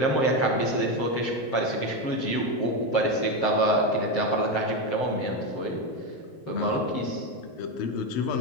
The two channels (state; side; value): late; right; 7.6 ms